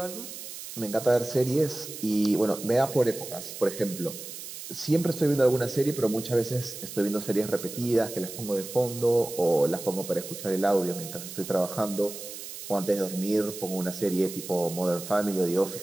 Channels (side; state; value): right; noise; hiss, 11 dB below the sound